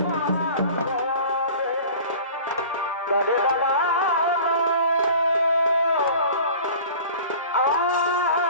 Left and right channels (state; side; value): inverted; both; correlation -0.42